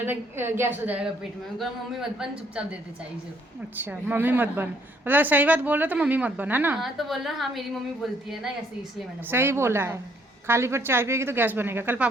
गैस हो जाएगा पेट में। मैं मम्मी मत बन, चुपचाप देते चाय से। अच्छा मम्मी मत बन, मतलब सही बात बोल रहे तो मम्मी मत बन, है ना? हाँ तो बोल रहा हाँ मेरी मम्मी बोलती है ना ऐसे, इसलिए मैंने सही बोला है, खाली पेट चाय पिएगी तो गैस बनेगा। कल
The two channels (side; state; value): both; normal; correlation 0.67